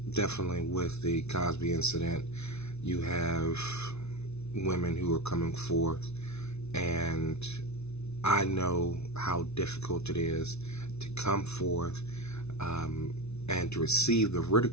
Definitely with the Cosby incident, you have women who are coming forth, and I know how difficult it is to come forth and to receive the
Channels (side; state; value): right; late; 0.81 ms